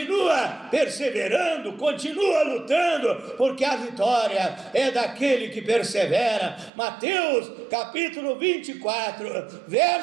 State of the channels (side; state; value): left; drops out; at 6.7 s